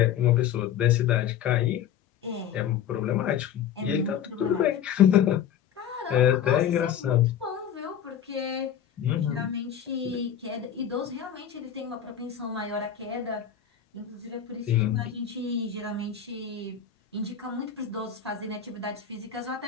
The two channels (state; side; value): quieter; right; 9.0 dB